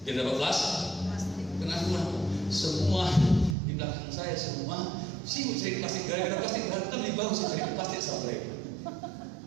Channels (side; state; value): left; drops out; at 3.6 s